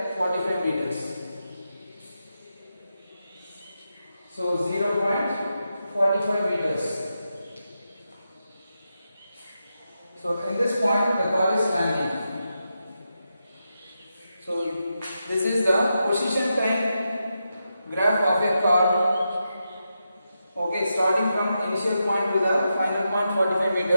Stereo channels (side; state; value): both; inverted; correlation -0.87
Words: 45 meters. So 0.45 meters. So in this point the car is standing. So this is the position time graph of a car. Okay, starting from initial point to the final point 45